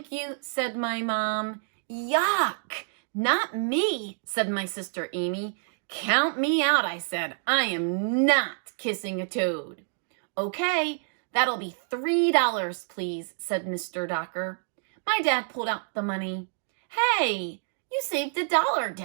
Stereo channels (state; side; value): silent; left; digital silence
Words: you, said my mom. Yuck! Not me, said my sister Amy. Count me out, I said. I am not kissing a toad. Okay, that'll be $3, please, said Mr. Docker. My dad pulled out the money. Hey, you saved $1,